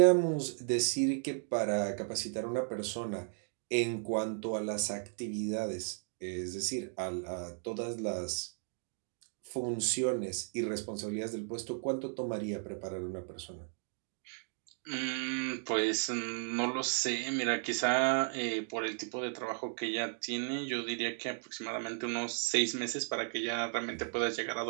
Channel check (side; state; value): left; silent; digital silence